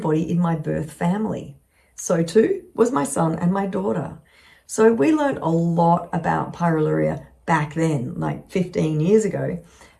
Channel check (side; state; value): both; identical; correlation 1.00